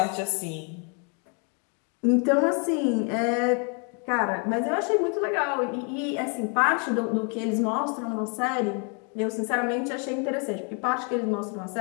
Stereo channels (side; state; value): right; quieter; 38.0 dB